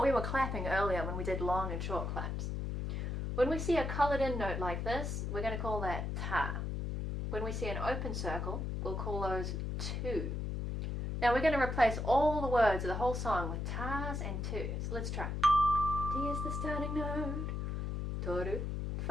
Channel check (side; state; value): left; noise; hum, 2 dB below the sound